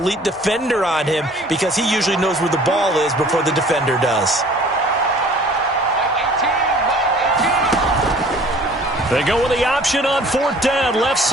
defender on him, because he usually knows where the ball is before the defender does. They go with the option on 4th down, left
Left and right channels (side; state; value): both; normal; correlation 0.50